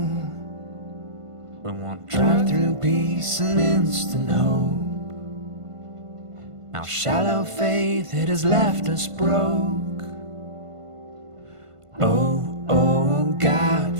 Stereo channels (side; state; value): left; late; 1.5 ms